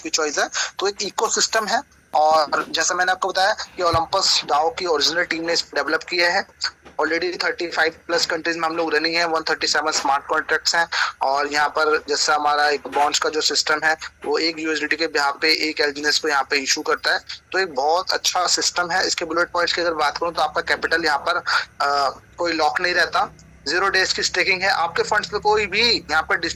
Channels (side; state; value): both; identical; correlation 1.00